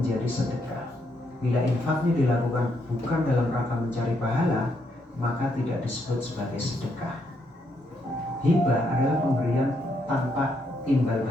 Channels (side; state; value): both; normal; correlation 0.76